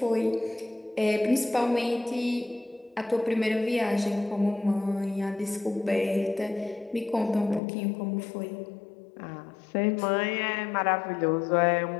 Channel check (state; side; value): drops out; right; at 7.6 s